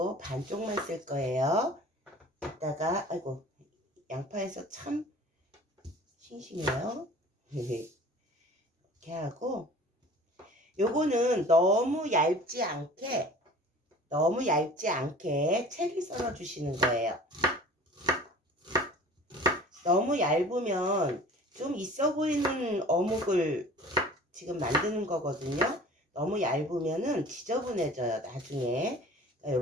반쪽만 쓸 거예요. 이따가 아이고 양파에서 참 싱싱해요. 이렇게 하고 요거는 너무 얇지 않게 채를 썰어 주시는 거예요. 너무 얇으면 좀 있어 보이는 어묵을 지금 만드는 거거든요. 너무 얇으면은 지저분해져요 나중에.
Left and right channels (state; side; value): normal; both; correlation 0.44